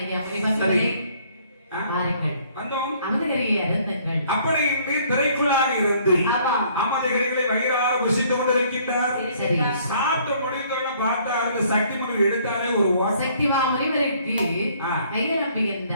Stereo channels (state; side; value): inverted; both; correlation -0.61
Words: ஐயா முனிவர்களே, ஆ? வாருங்கள், வந்தோம். அமுதகரியை அருந்துங்கள். அப்படி இன்று திரைக்குள்ளாக இருந்து ஆமா. அமிர்தகரிகளை வயிறார புசித்து கொண்டிருக்கின்றார். சரி. சாப்பிட்டு முடிந்தோட பார்த்தா அந்த சக்தி மகள் எடுத்தாலே ஒரு வாசம். சக்தி மாமுனிவருக்கு ஆ. கைது